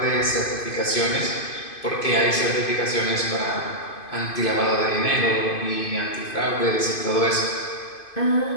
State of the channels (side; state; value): right; late; 2.5 ms